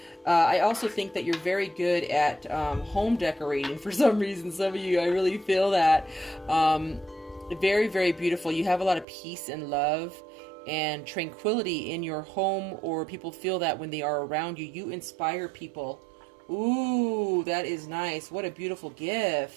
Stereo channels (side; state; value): left; drops out; at 9.1 s